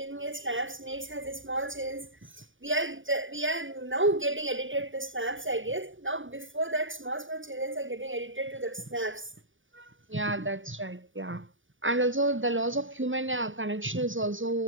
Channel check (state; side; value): late; left; 0.57 ms